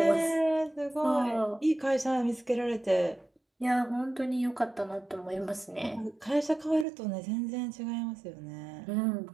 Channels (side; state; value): left; drops out; at 6.9 s